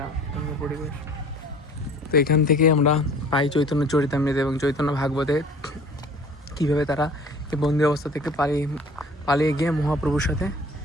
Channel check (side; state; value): both; normal; correlation 0.48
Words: সুন্দর পরিবেশ। তো এখান থেকে আমরা পাই চৈতন্য চরিতামৃত এবং চৈতন্য ভাগবতে কীভাবে তারা এই বন্দি অবস্থা থেকে পালিয়ে গিয়ে মহাপ্রভুর সাথে